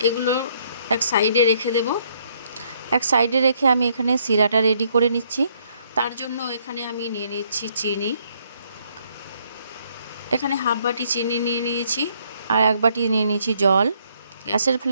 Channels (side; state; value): both; inverted; correlation -0.69